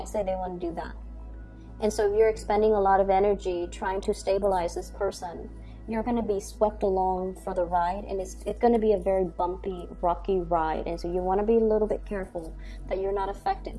day they want to do that. And so if you're expending a lot of energy trying to stabilize this person, you're going to be swept along for the ride, and it's going to be a very bumpy, rocky ride. And so you want to be a little bit careful that you're not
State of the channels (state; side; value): identical; both; correlation 1.00